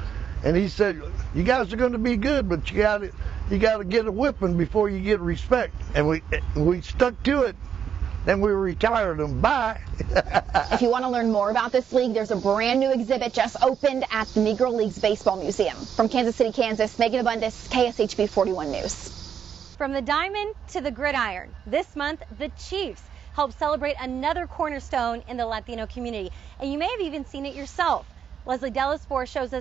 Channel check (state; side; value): quieter; left; 8.0 dB